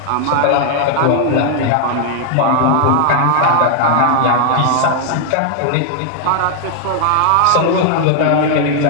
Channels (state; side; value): different; both; correlation 0.00